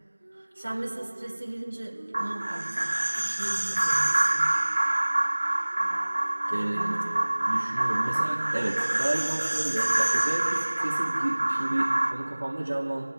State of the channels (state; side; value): inverted; both; correlation -1.00